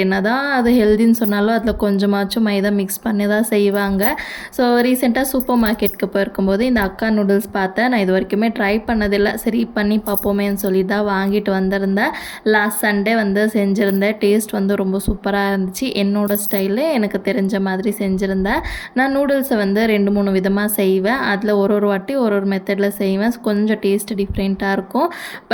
என்னதான் அது ஹெல்தின்னு சொன்னாலும், அதில கொஞ்சமாச்சும் மைதா மிக்ஸ் பண்ணி தான் செய்வாங்க. ஸோ ரீசென்ட்டா சூப்பர் மார்க்கெட்டுக்கு போயிருக்கும்போது, இந்த அக்கா நூடுல்ஸ் பார்த்தேன். நான் இதுவரைக்குமே ட்ரை பண்ணதில்ல. சரி பண்ணி பார்ப்போமேன்னு சொல்லி தான் வாங்கிட்டு வந்திருந்தேன். லாஸ்ட் சண்டே வந்து செஞ்சிருந்தேன். டேஸ்ட் வந்து ரொம்ப சூப்பரா இருந்துச்சு. என்னோட ஸ்டைலு எனக்கு தெரிஞ்ச மாதிரி செஞ்சிருந்தேன். நான் நூடுல்ஸை வந்து 2, 3 விதமா செய்வேன். அதில் ஒரு ஒரு வாட்டி ஒரு ஒரு மெத்தடில் செய்வேன். கொஞ்சம் டேஸ்ட் டிஃப்ரெண்ட்டாக இருக்கும்.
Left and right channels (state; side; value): identical; both; correlation 1.00